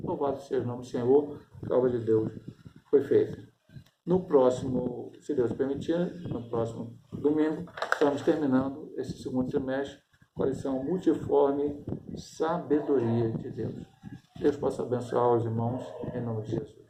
Louvado seja o nome do Senhor, a obra de Deus foi feita. No próximo, se Deus permitir, no próximo domingo, estamos terminando esse segundo semestre com a lição multiforme Sabedoria de Deus. Deus possa abençoar os irmãos em nome de Jesus.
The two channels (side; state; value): both; identical; correlation 1.00